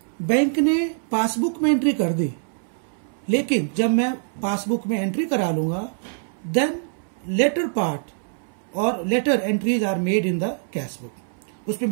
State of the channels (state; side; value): silent; left; 63 dB below the other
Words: bank ने passbook में entry कर दी, लेकिन जब मैं पासबुक में एंट्री करा लूंगा देन लेटर पार्ट और later entries are made in the cash book. उसमें